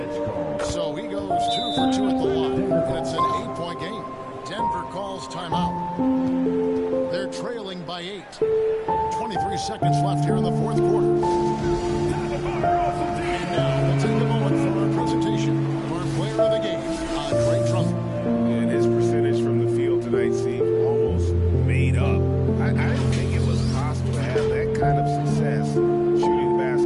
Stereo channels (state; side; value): identical; both; correlation 1.00